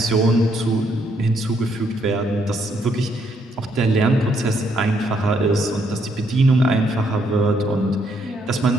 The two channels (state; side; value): normal; both; correlation 0.73